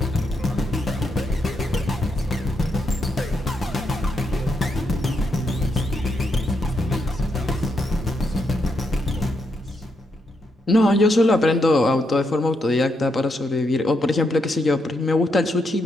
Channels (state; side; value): normal; both; correlation 0.80